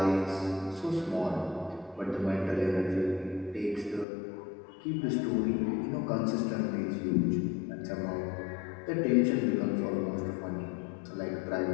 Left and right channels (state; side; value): drops out; right; at 4.0 s